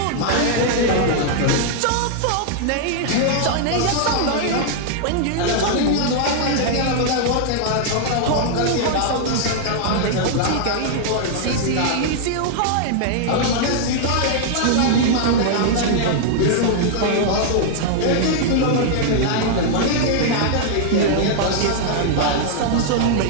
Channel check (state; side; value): different; both; correlation -0.01